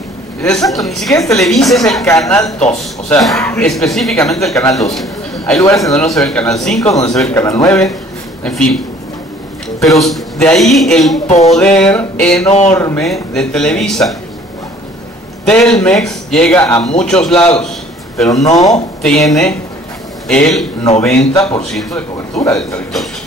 Exacto, ni siquiera es Televisa, es el Canal 2, o sea, específicamente el Canal 2. Hay lugares en donde no se ve el Canal 5, donde se ve el Canal 9, en fin. Pero de ahí el poder enorme de Televisa. Telmex llega a muchos lados, pero no tiene el 90% de cobertura del territorio.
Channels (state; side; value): normal; both; correlation 0.54